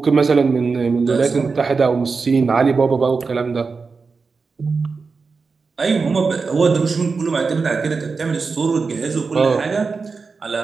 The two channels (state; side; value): quieter; left; 4.6 dB